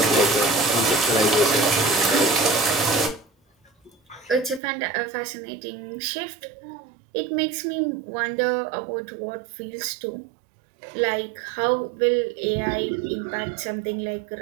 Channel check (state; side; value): drops out; left; at 4.6 s